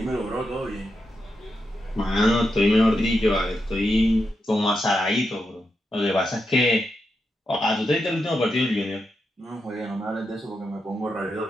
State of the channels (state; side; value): normal; both; correlation 0.86